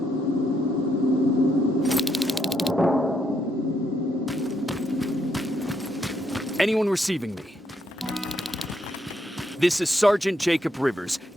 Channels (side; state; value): both; normal; correlation 0.76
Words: Anyone receiving me? This is Sergeant Jacob Rivers,